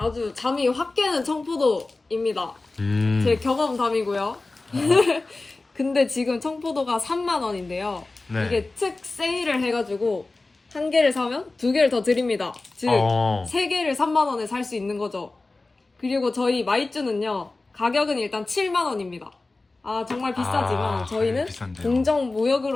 잠이 확 깨는 청포도입니다. 제 경험담이고요. 근데 지금 청포도가 3만 원인데요. 네. 이게 특 세일을 해가지고 한 개를 사면 두 개를 더 드립니다. 즉, 세 개를 3만 원에 살 수 있는 거죠. 그리고 저희 마이쮸는요. 가격은 일단 7만 원입니다. 아, 정말 비싸지만 저희는 비싼데요. 공정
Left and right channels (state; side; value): quieter; right; 3.3 dB